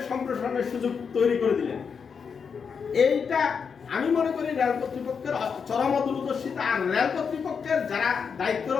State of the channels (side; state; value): right; quieter; 6.2 dB